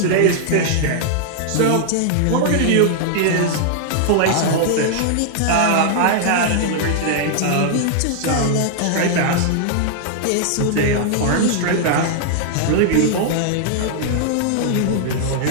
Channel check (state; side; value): different; both; correlation -0.01